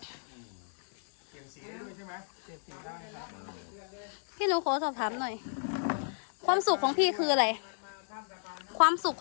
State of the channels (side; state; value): right; silent; digital silence